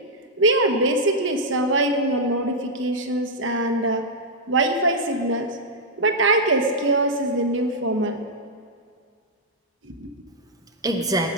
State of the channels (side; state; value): both; normal; correlation -0.05